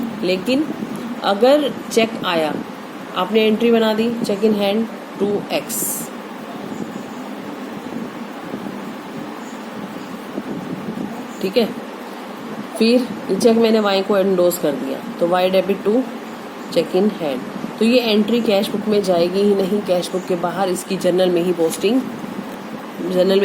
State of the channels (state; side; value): identical; both; correlation 1.00